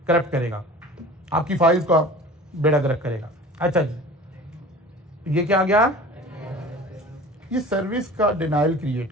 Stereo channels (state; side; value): normal; both; correlation 0.41